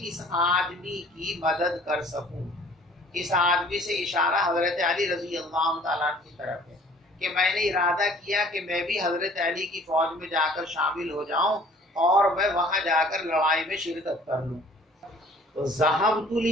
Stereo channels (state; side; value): normal; both; correlation 0.53